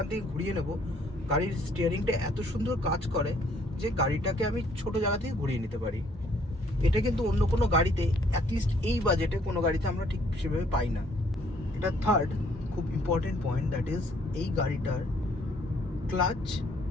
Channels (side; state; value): both; normal; correlation 0.64